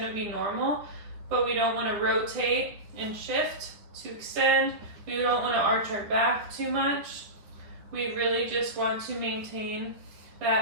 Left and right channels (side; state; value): left; late; 9.8 ms